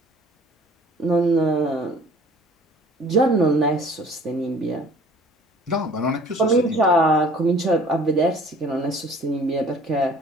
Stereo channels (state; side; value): normal; both; correlation 0.51